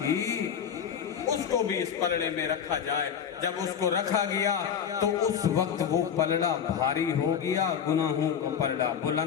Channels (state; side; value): quieter; right; 8.0 dB